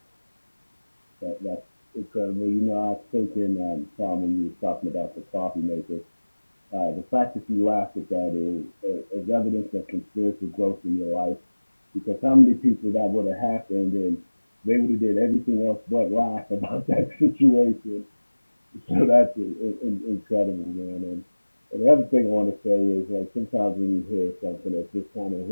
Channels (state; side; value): inverted; both; correlation -1.00